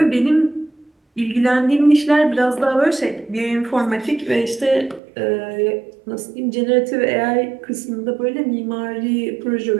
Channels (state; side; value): drops out; left; at 5.0 s